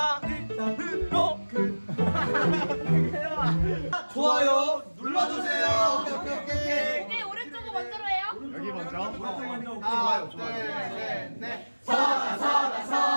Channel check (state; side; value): inverted; both; correlation -1.00